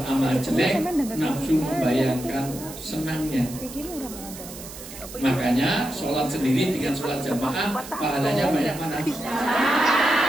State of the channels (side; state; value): right; noise; hiss, 14 dB below the sound